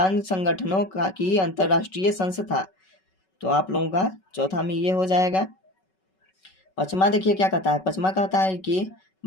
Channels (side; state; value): right; late; 5.3 ms